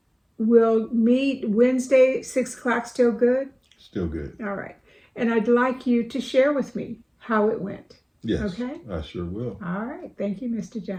we'll meet Wednesday, 6 o'clock, still good? Still good. All right. And I'd like you to share with me how it went. Yes. Okay? I sure will. All right. Thank you, Mr.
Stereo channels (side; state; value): both; identical; correlation 1.00